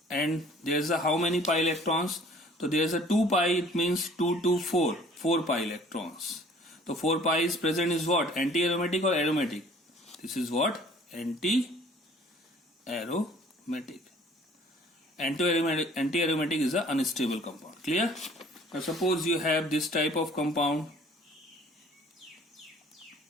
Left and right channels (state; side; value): normal; both; correlation 0.53